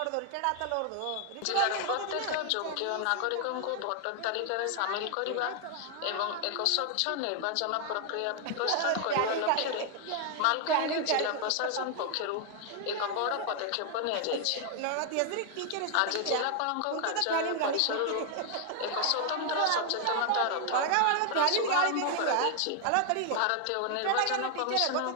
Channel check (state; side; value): different; both; correlation 0.00